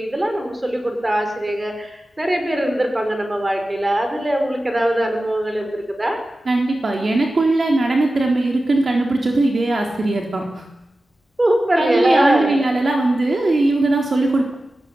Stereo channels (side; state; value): both; normal; correlation 0.94